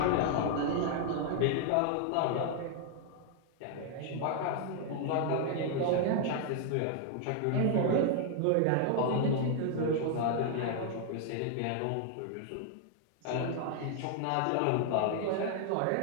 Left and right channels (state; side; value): different; both; correlation 0.00